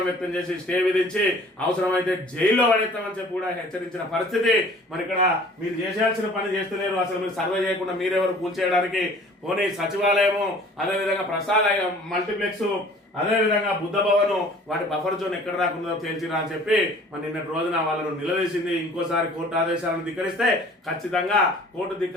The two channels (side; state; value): both; normal; correlation 0.50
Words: వ్యక్తం చేసి స్టే విధించి అవసరమైతే జైల్లో పడేస్తామని చెప్పి కూడా హెచ్చరించిన పరిస్థితి. మరి ఇక్కడ మీరు చేసేయాల్సిన పని చేస్తలేరు. అసలు మీరు సర్వే చేయకుండా మీరెవరు కూల్చేయడానికి? పోనీ సచివాలయము, అదేవిధంగా ప్రసాద్ మల్టీప్లెక్స్, అదేవిధంగా బుద్ధ భవన్ వాటి బఫర్ జోన్ ఎక్కడ రాకుండా తేల్చిరా అని చెప్పి మరి నిన్నటి రోజున వాళ్ళను నిలదీసింది. ఇంకోసారి కోర్టు ఆదేశాలను ధిక్కరిస్తే ఖచ్చితంగా కోర్టు